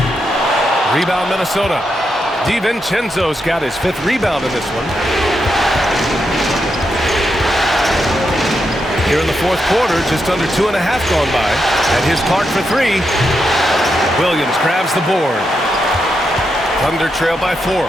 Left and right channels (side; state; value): both; normal; correlation 0.84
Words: Rebound Minnesota. DiVincenzo's got his 5th rebound in this one. Here in the 4th quarter, just under 2.5 gone by. And here's Clark for 3. Williams grabs the board. Thunder trail by 4.